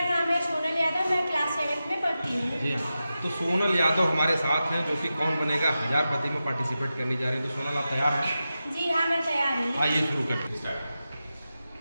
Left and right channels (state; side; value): inverted; both; correlation -0.92